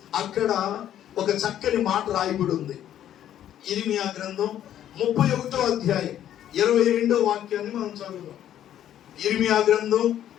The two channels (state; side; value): quieter; right; 11.1 dB